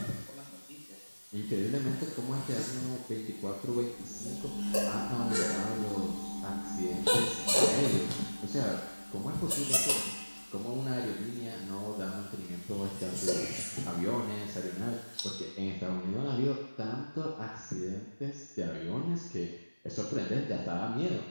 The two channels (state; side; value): inverted; both; correlation -1.00